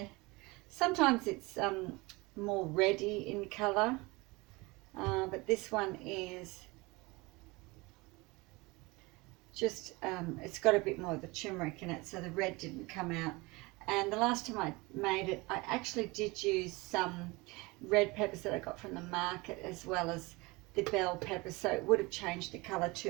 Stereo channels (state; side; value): quieter; left; 24.2 dB